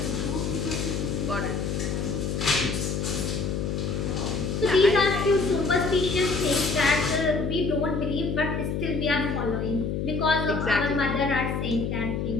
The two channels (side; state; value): left; noise; hum, 1 dB below the sound